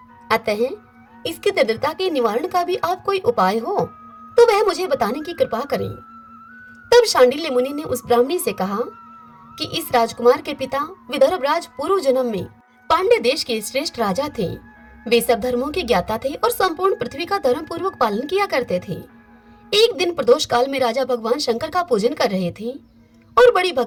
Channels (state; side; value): identical; both; correlation 1.00